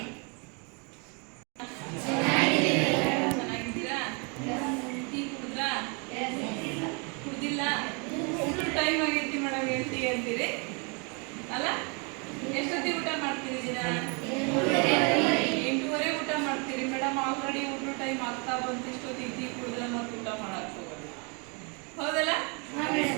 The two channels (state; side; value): quieter; left; 33.7 dB